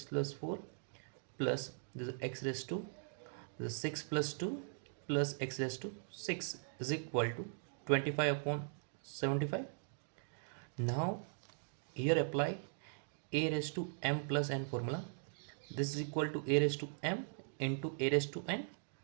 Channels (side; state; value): left; silent; digital silence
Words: plus 4 plus this x raised to this 6 plus 2 plus x raised to 6 is equal to 25 upon 75. Now here apply a raised to m plus n formula. This is equal to a raised to m into a raised to n.